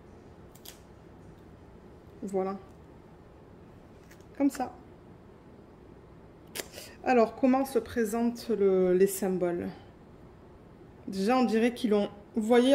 Voilà. Comme ça. Alors, comment se présentent les symboles ? Déjà, on dirait qu'ils l'ont... Vous voyez,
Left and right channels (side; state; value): both; identical; correlation 1.00